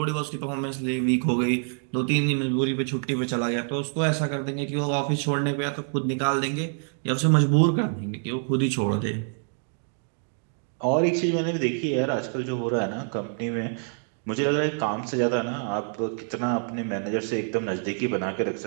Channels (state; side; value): silent; left; 58 dB below the other